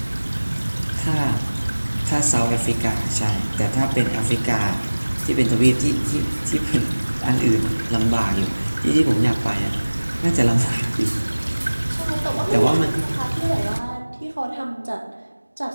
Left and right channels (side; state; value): both; inverted; correlation -1.00